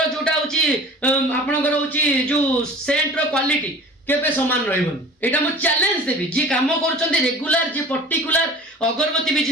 जोटा होछि आपनकर होछि जो सेंट रो क्वालिटी केबे समान रहबोनी एटा मु चैलेंज देबी जे काम करचंती रेगुलर जे पर्टिकुलर अगरबत्ती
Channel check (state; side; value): normal; both; correlation 0.42